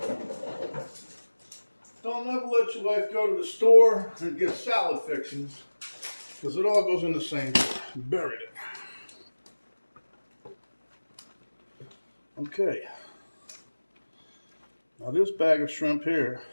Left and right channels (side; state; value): both; inverted; correlation -1.00